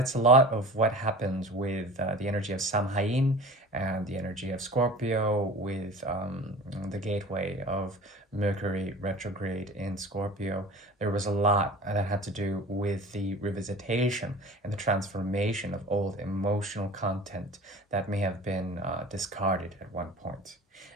a lot of what happens with the energy of Samhain and the energy of Scorpio with the gateway of Mercury retrograde in Scorpio. There was a lot that had to do with the revisitation and the transformation of old emotional content that may have been discarded at one point.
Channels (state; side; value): normal; both; correlation 0.39